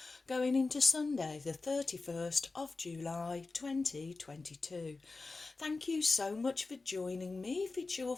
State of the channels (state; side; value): quieter; right; 3.7 dB